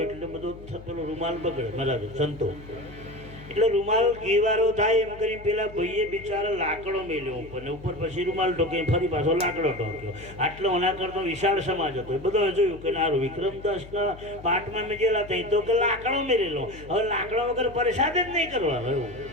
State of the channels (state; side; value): noise; left; hum, 17 dB below the sound